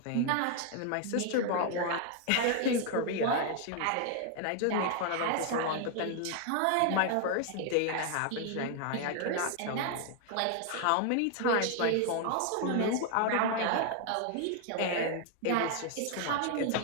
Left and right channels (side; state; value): both; different; correlation 0.00